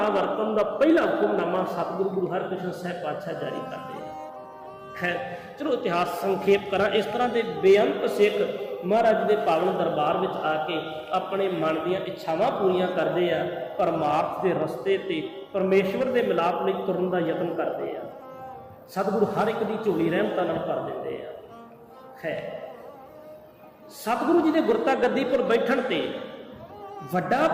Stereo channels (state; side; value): identical; both; correlation 1.00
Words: ਵਰਤਣ ਦਾ ਪਹਿਲਾ ਹੁਕਮਨਾਮਾ ਸਤਿਗੁਰੂ ਗੁਰੂ ਹਰਕ੍ਰਿਸ਼ਨ ਸਾਹਿਬ ਪਾਤਸ਼ਾਹ ਜਾਰੀ ਕਰਦੇ ਆ। ਖੈਰ ਚਲੋ ਇਤਿਹਾਸ ਸੰਖੇਪ ਕਰਾਂ। ਇਸ ਤਰ੍ਹਾਂ ਦੇ ਬੇਅੰਤ ਸਿੱਖ ਮਹਾਰਾਜ ਦੇ ਪਾਵਨ ਦਰਬਾਰ ਵਿੱਚ ਆ ਕੇ ਆਪਣੇ ਮਨ ਦੀਆਂ ਇੱਛਾਵਾਂ ਪੂਰੀਆਂ ਕਰਦੇ ਆ, ਪਰਮਾਰਥ ਦੇ ਰਸਤੇ ਤੇ ਪਰਮੇਸ਼ਵਰ ਦੇ ਮਿਲਾਪ ਲਈ ਤੁਰਨ ਦਾ ਯਤਨ ਕਰਦੇ ਆ। ਸਤਿਗੁਰੂ ਹਰ ਇੱਕ ਦੀ ਝੋਲੀ ਰਹਿਮਤਾਂ ਨਾਲ ਭਰ ਦਿੰਦੇ ਆ। ਹੈ ਸਤਿਗੁਰੂ ਜੀ ਦੇ ਗੁਰਤਾ ਗੱਦੀ ਪਰ ਬੈਠਣ ਤੇ ਵੱਡਾ